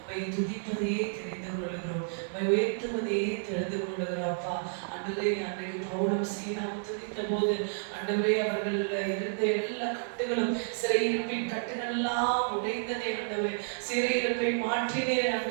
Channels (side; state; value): left; silent; digital silence